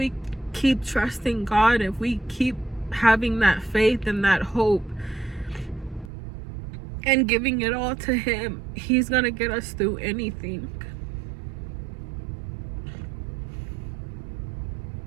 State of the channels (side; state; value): left; drops out; at 6.1 s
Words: keep trusting God, if we keep having that faith and that hope and giving it all to him, he's gonna get us through anything.